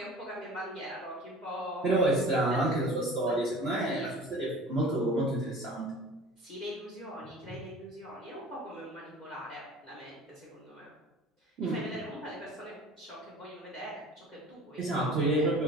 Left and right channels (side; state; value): both; normal; correlation 0.43